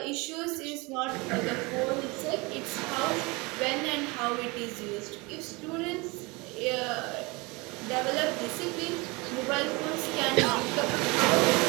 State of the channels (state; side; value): quieter; left; 26.0 dB